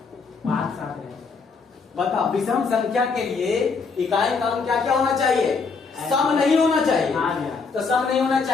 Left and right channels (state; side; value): quieter; right; 4.8 dB